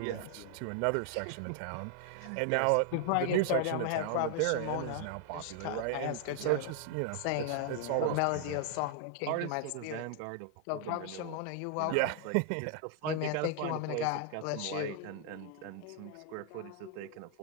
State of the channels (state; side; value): different; both; correlation 0.00